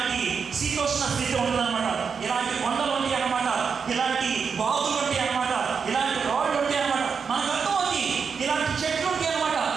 శీతోష్ణ స్థితి ఉండదన్నమాట, ఇలాంటి కొండలు ఉంటాయి అన్నమాట, ఇలాంటి బాగులు ఉంటాయి అన్నమాట, ఇలాంటి రోడ్లు ఉంటాయి అన్నమాట. మనకు అర్థమవుతుంది, ఇలాంటి చెట్లు ఉంటాయి అన్నమాట,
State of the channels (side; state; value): left; quieter; 5.9 dB